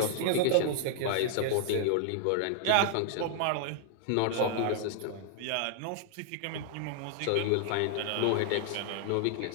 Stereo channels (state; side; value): different; both; correlation 0.00